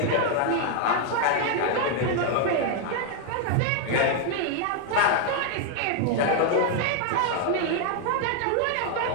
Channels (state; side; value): different; both; correlation 0.00